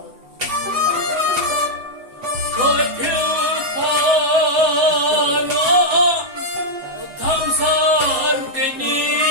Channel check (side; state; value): left; late; 7.9 ms